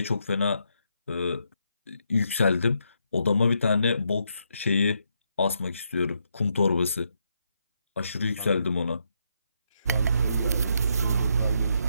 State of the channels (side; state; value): both; inverted; correlation -0.78